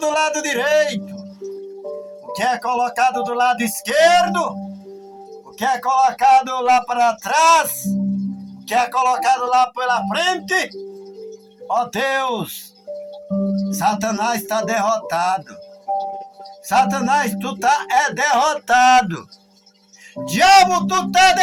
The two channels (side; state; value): both; identical; correlation 1.00